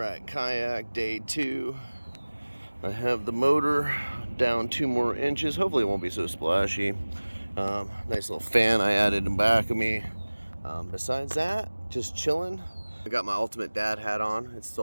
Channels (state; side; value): inverted; both; correlation -1.00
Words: kayak day 2. I have the motor down 2 more inches. Hopefully it won't be so splashy. Nice little fan I added in back of me. Besides that, just chilling. I got my Ultimate Dad hat on. It's